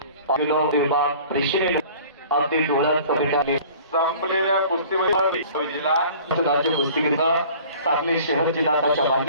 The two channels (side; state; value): both; inverted; correlation -0.47